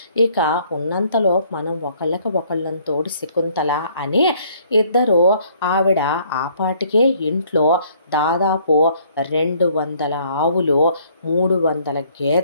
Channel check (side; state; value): both; inverted; correlation -0.62